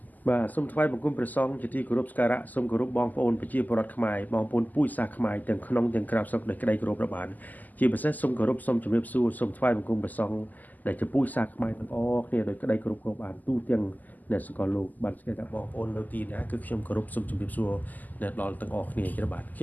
បាទសូមថ្លែងបង្គំព្រះសង្ឃជាទីគោរពសក្ការៈសូមគោរពបងប្អូនប្រជាពលរដ្ឋខ្មែរបងប្អូនពូជសាសន៍ខ្មែរទាំងក្នុងទាំងក្រៅស្រុកដោយក្តីគោរពរាប់អានជាពិសេសសូមគោរពសូមជម្រាបសួរសូមថ្លែងបង្គំព្រះសង្ឃដែលជាពូជសាសន៍ខ្មែរទាំងអស់គ្នាដោយក្តីគោរពរាប់អានទូទាំងអ្នកសកលលោកបានស្គាល់ថាបងប្អូននៅទីណាគឺខ្ញុំគោរពសូមជម្រាបសួរដល់ទាំងអស់គ្នាជាបាទខ្ញ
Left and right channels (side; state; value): right; late; 0.082 ms